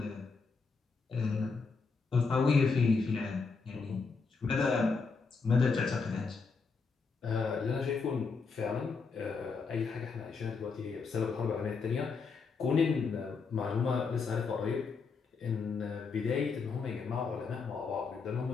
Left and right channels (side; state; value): right; quieter; 4.8 dB